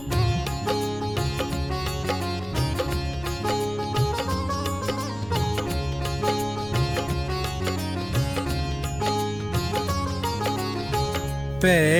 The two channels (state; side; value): noise; left; rumble, 17 dB below the sound